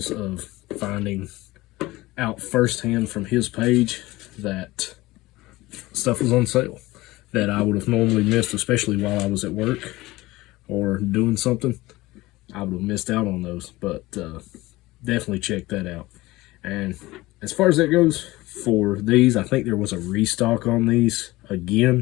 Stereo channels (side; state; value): right; quieter; 19.3 dB